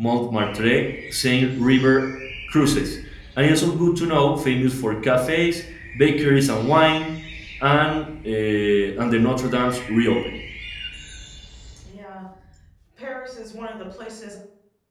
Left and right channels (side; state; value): both; identical; correlation 1.00